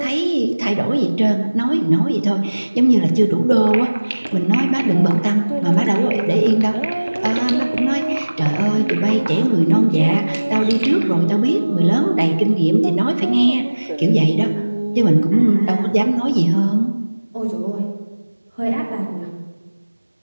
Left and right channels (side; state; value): both; inverted; correlation -1.00